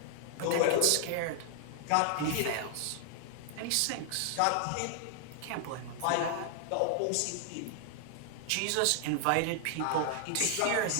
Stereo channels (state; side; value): different; both; correlation 0.00